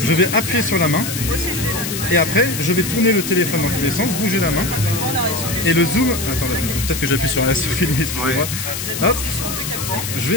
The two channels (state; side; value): noise; left; hiss, 5 dB below the sound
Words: vais appuyer sur la main et après je vais tourner le téléphone dans tous les sens, bouger la main et le zoom. Attendez, peut-être que j'appuie sur filmer, excusez-moi. Hop, je